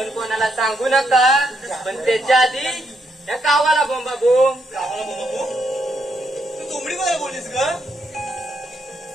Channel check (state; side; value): normal; both; correlation 0.77